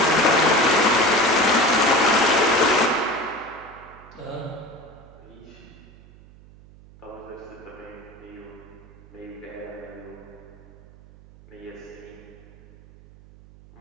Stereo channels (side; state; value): right; noise; hum, 23 dB below the sound